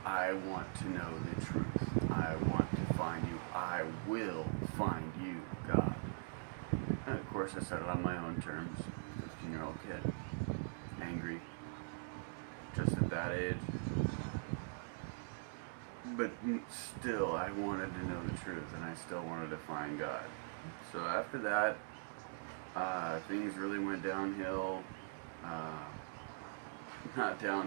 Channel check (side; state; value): left; silent; digital silence